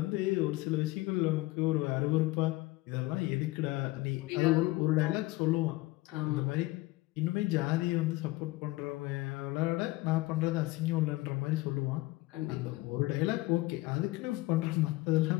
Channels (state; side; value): quieter; right; 20.0 dB